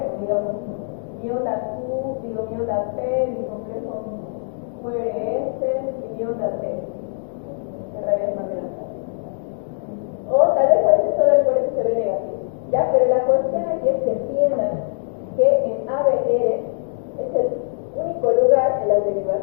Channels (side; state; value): right; silent; digital silence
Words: Digamos, mi onda Q, mi onda P, mi complejo QRS y mi onda T, que en realidad es más grande. O tal vez a veces solo el QRS se ve negativo. Ya, pero la cuestión aquí es que entiendan que en ABR es el único lugar en las